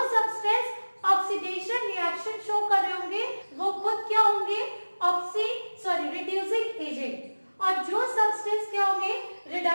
सब्सटेंस ऑक्सीडेशन रिएक्शन शो कर रहे होंगे वो खुद क्या होंगे? Reducing agent. और जो सब्सटेंस क्या होंगे?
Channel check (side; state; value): both; inverted; correlation -1.00